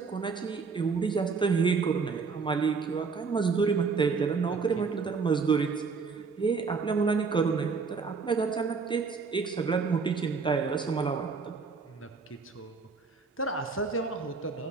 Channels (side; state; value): left; quieter; 5.0 dB